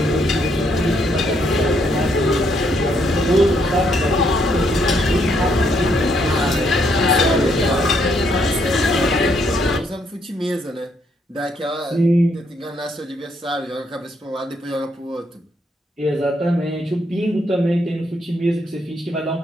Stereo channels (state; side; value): normal; both; correlation 0.73